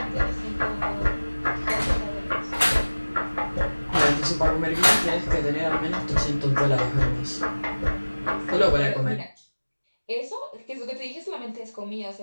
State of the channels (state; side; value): inverted; both; correlation -1.00